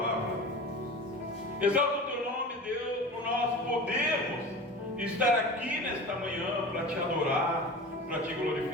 Exalta o teu nome, Deus, por nós podermos estar aqui nesta manhã para te adorar, para te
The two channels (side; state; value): both; normal; correlation 0.33